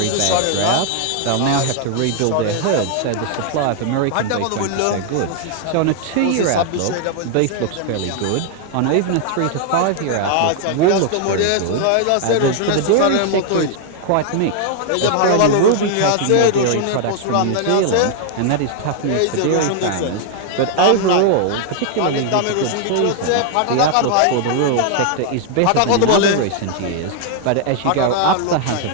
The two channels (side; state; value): both; different; correlation 0.00